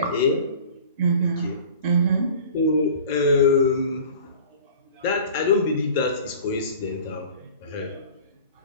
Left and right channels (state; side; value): inverted; both; correlation -0.42